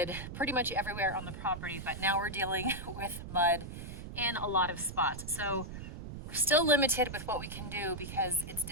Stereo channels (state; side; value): noise; right; rumble, 9 dB below the sound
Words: pretty much everywhere on the property, but now we're dealing with mud in a lot of spots. So we're still limited with what we can do because it's